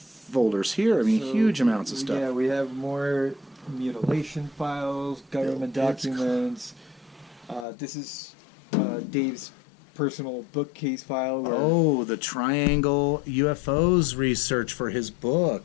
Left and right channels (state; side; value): drops out; right; at 7.7 s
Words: here? I mean, So, huge amounts of stuff. Yeah, we have more mutilation files, government It's documents. This is Dave's personal bookcase file. Where Oh, the triangle UFOs research for his